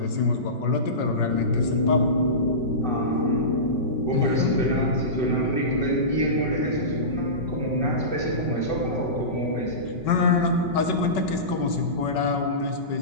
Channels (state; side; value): late; right; 5.3 ms